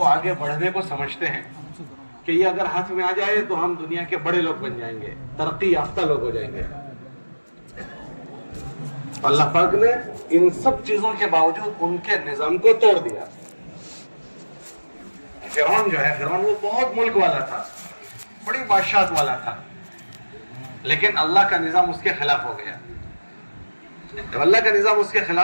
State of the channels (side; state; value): both; inverted; correlation -1.00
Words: आगे बढ़ने को समझते हैं कि ये अगर हाथ में आ जाए तो हम दुनिया के बड़े लोग बन जाएंगे, तरक्की याफ्ता लोग हो जाएंगे। अल्लाह पाक ने इन सब चीजों के बावजूद उनके निजाम को तोड़ दिया। फिरौन जो है, फिरौन वो बहुत मुल्क वाला था, बड़ी बादशाहत वाला था, लेकिन अल्लाह का निजाम उसके खिलाफ हो गया। जब अल्लाह का निजाम उसके